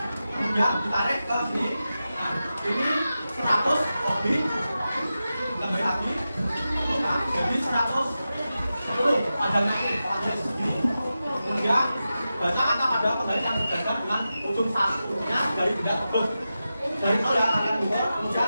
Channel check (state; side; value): inverted; both; correlation -0.92